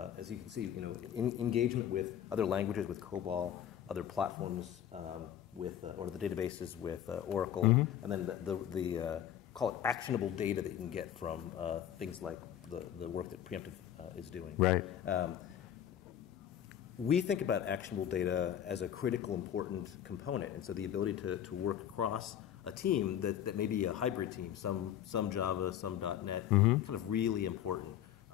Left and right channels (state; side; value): quieter; right; 10.4 dB